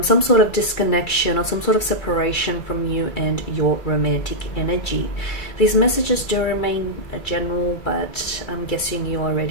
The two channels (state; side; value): late; right; 2.3 ms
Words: some sort of disconnection or some sort of separation from you and your romantic energy. These messages do remain general, but I'm guessing you